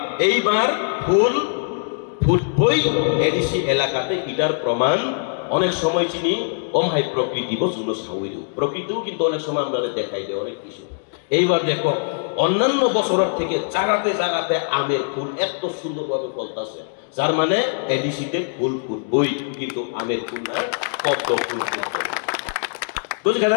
এইবার ফুল ফুটবই এডিসি এলাকাতে এটার প্রমাণ অনেক সময় চিনি ভাই প্রকৃতি বসুন প্রকৃতিও কিন্তু অনেক সময় আমরা দেখাই দেয় অনেক কিছু এইবার দেখো অন্যান্য বছরের থেকে জায়গাতে আমের ফুল এত সুন্দরভাবে ফলতেছে যার মানে এডিসিতে ফুল ফুটবই কিন্তু আমের ফুল না পদ্ম ফুল বুঝলে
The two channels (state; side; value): silent; right; digital silence